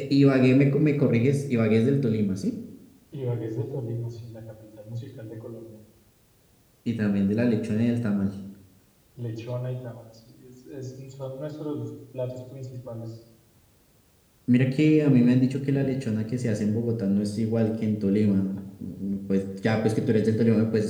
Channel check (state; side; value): identical; both; correlation 1.00